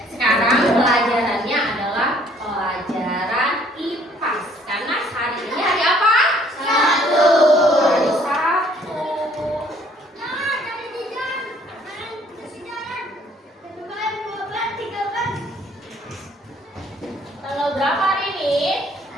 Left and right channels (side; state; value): both; normal; correlation 0.60